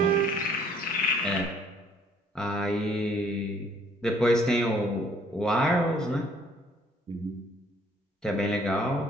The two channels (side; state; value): both; normal; correlation 0.61